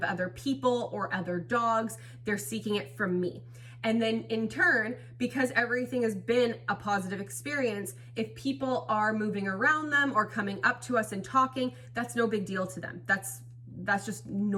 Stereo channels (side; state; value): both; identical; correlation 1.00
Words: other people or other dogs. They're seeking it from me. And then in turn, because everything has been a positive experience, if people are moving around them or coming up to us and talking, that's no big deal to them. That's just